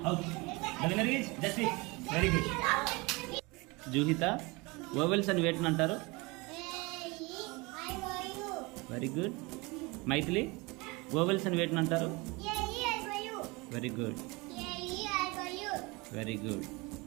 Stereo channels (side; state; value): left; quieter; 25.6 dB